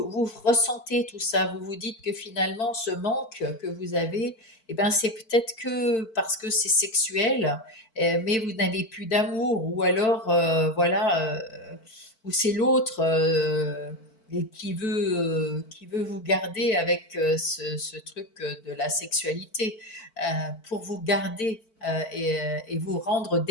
ressentez tout ça. Vous vous dites que finalement, ce manque que vous avez, eh ben, c'est peut-être que parce que c'est sexuel, mais vous n'avez plus d'amour, ou alors, voilà, ou c'est l'autre. Et qui veut vous garder avec ce truc de la sexualité, pour vous garder et vous rendre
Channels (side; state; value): right; late; 4.5 ms